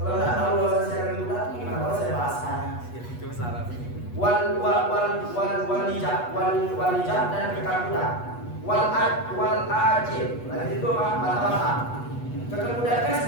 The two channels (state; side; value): late; right; 8.2 ms